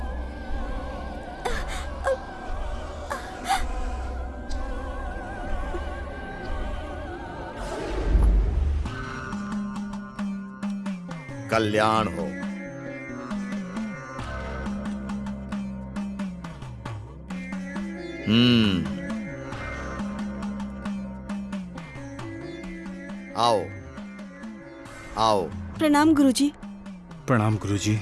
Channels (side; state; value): both; identical; correlation 1.00